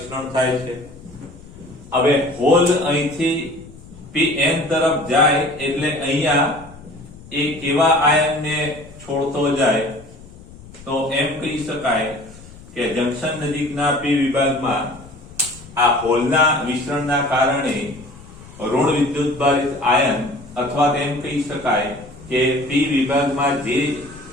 થાય છે હવે હોલ અહીંથી pn તરફ જાય એટલે અહીંયા એ કેવા આયનને છોડતો જાય તો એમ કહી શકાય કે જંક્શન નજીકના p વિભાગમાં આ હોલના વિસ્તરણના કારણે ઋણ વિદ્યુત ભારિત આયન અથવા તેમ કહી શકાય કે p વિભાગમાં જે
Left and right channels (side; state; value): left; noise; rumble, 19 dB below the sound